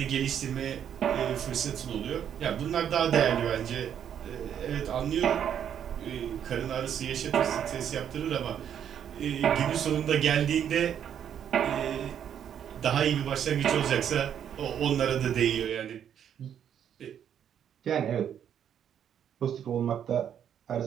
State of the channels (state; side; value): quieter; left; 9.1 dB